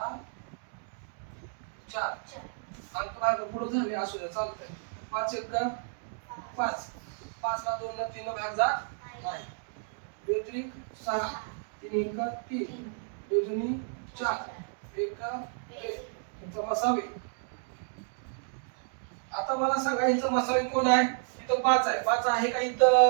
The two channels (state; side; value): silent; left; digital silence